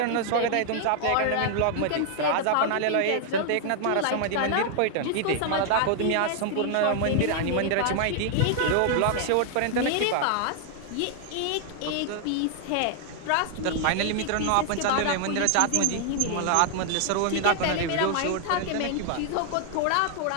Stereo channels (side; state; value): both; different; correlation 0.00